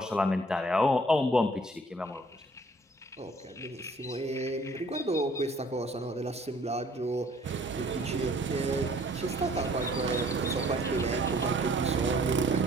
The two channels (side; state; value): both; normal; correlation 0.57